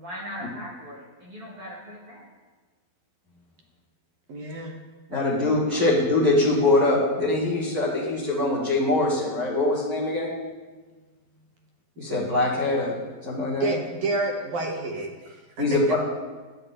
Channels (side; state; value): left; late; 11 ms